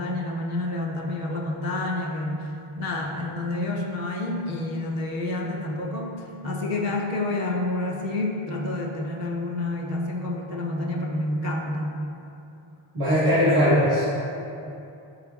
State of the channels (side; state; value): left; late; 6.5 ms